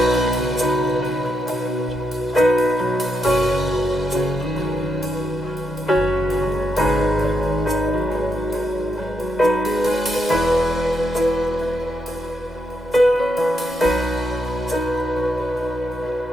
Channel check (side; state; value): both; normal; correlation 0.81